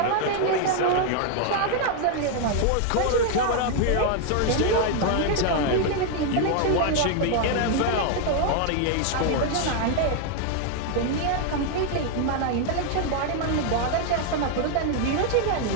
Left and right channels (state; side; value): different; both; correlation 0.00